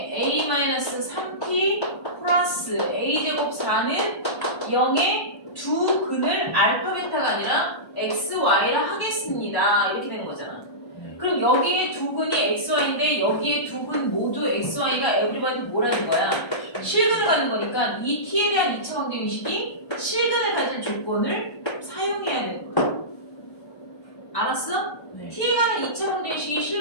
a-3t 플러스 a제곱 4는 0의 두 근을 알파 베타가 아니라 xy라 하겠습니다. 이렇게 되는 거잖아. 네. 그럼 여기에 두 근이 xy인데 여기에 두 근 모두 xy가 에브리바디 뭐라는 거야? 실근을 갖는 거니까 이 t에 대한 2차 방정식이 실근을 가질 조건을 사용해야 되는 거야. 알았어? 네. t에 관한 2차 방정식이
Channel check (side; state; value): right; late; 1.3 ms